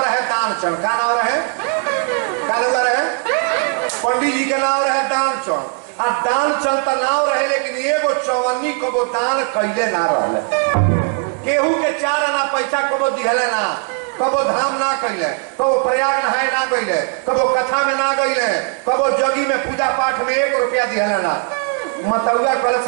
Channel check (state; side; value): quieter; left; 37.0 dB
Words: रहे दानचंद का नाम रहे का नाम रहे पंडित जी के नाम रहे दानचंद आ दानचंद का नाम रहे लेकिन एगो चौवन्नी को दान कैले ना रहले केहू के 4 आना पैसा कबो दिहले ना कबो धाम ना कैले कबो प्रयाग नहाए ना गईले कबो कथा में ना गईले कबो जगी में पूजा पाठ में 1 रुपया दिहले ना मतौआ कल